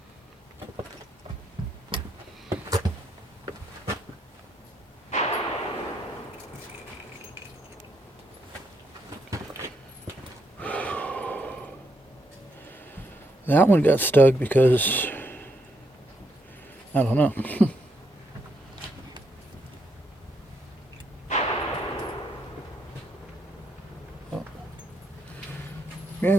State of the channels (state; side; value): normal; both; correlation 0.77